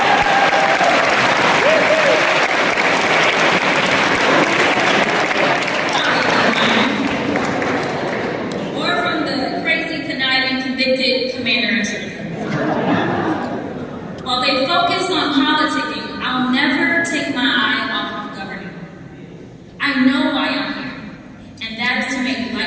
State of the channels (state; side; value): identical; both; correlation 1.00